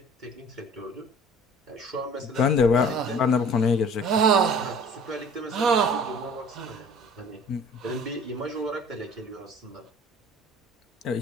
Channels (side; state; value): both; normal; correlation 0.47